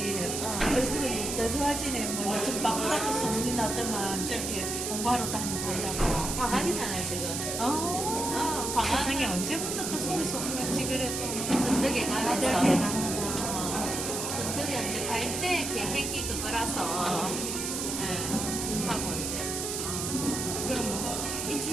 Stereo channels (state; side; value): noise; right; hiss, 3 dB below the sound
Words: 얼굴이 더 좋아지네. 뭐 요즘 바쁘다고 소문이 나더만 저기 공부하러 다니고 이러고. 방학이잖아요 지금. 방학. 세상에 언제부터 또 소리 소문 없이 그래 또. 든든하게 다들 가면서. 대단하다. 든든히 이제 갈 때 계획이 그거라서 하고 이제. 그럼 뭐